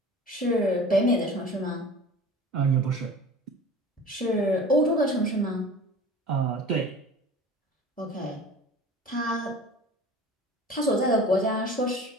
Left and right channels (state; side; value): normal; both; correlation 0.40